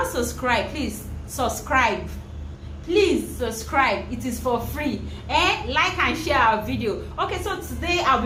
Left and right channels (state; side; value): identical; both; correlation 1.00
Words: subscribed, please subscribe. Please subscribe. It is for free. Like and share our video. Okay, so today